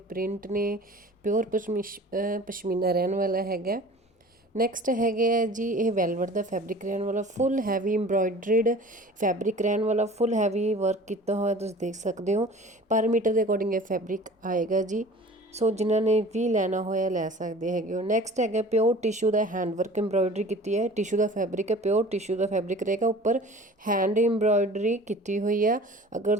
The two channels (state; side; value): normal; both; correlation 0.44